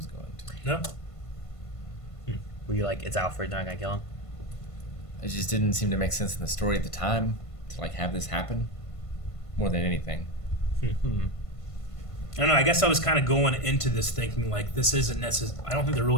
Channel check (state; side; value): late; right; 1.5 ms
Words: going to. No. Were you like, it's Alfred, they're not gonna kill him? It just didn't seem to make sense in the story at the time to like have this happen more than anything. I don't know. I guess I was kind of going into this thinking like this isn't necessary. I don't think they're